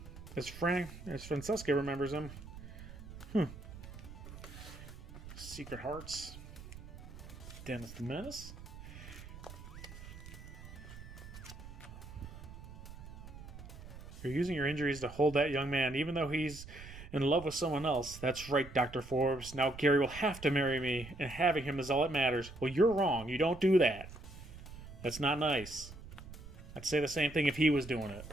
As Francesca remembers him. Secret Hearts. Dennis the Menace. You're using your injuries to hold that young man, even though he's in love with someone else. That's right, Dr. Forbes. Now Gary will have to marry me, and having him is all that matters. Well, you're wrong. You don't do that. That's not nice. I'd say the same thing if he was doing it.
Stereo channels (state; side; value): noise; right; rumble, 14 dB below the sound